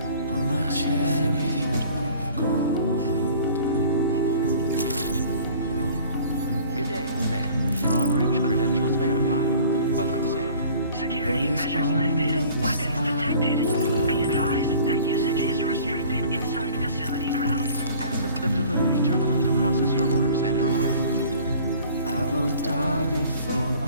On my chariot of gold. Good day, Sam. Your operator's credentials verified. Welcome, Sam. Security measures lifted. Weapons detected. Be advised that usage is restricted inside facility grounds. Access the delivery terminal to process your orders and requests. I won't die before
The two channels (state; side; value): inverted; both; correlation -0.49